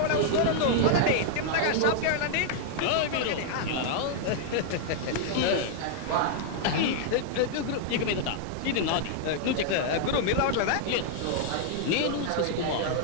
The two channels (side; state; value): both; different; correlation -0.01